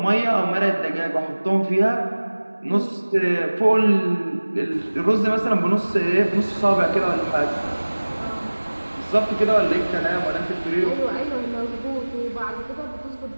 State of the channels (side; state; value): both; inverted; correlation -1.00